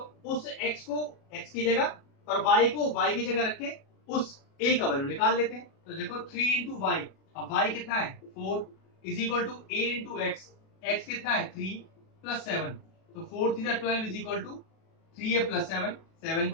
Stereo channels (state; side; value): late; right; 37 ms